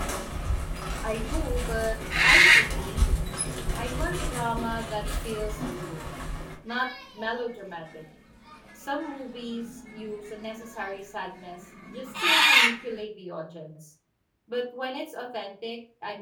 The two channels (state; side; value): identical; both; correlation 1.00